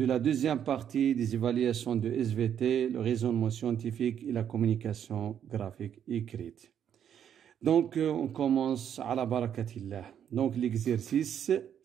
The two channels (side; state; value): left; quieter; 9.1 dB